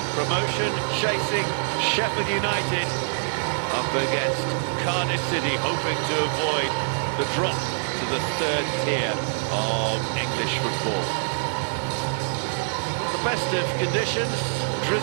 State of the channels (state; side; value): silent; left; digital silence